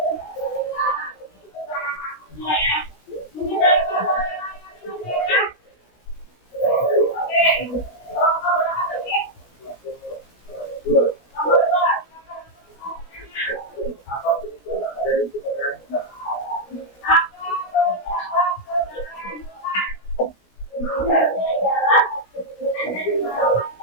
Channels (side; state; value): right; late; 17 ms